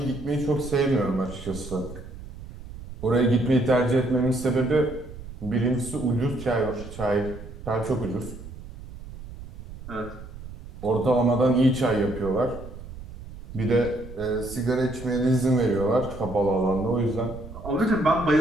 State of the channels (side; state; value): right; noise; rumble, 13 dB below the sound